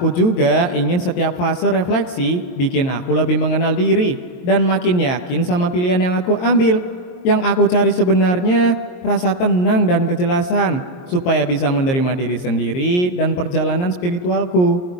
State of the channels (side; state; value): right; late; 22 ms